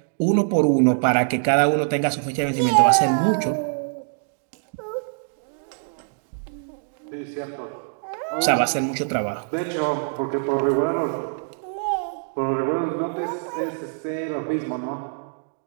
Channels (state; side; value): silent; left; digital silence